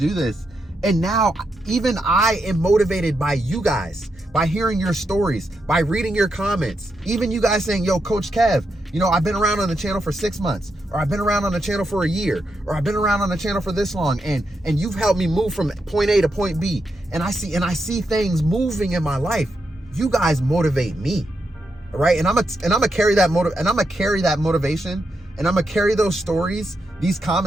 this. And now even I am motivated by you guys, by hearing your stories, by reading your comments. Even you guys saying, yo, Coach Kev, you know, I've been around on the channel for 6 months, or I've been around on the channel for a year, or I've been around on the channel for this long, and you've helped me move from point A to point B. And I see things moving in my life. You guys motivate me. All right, and I'm gonna carry that motivation, and I'm gonna carry those stories, these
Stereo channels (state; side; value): normal; both; correlation 0.84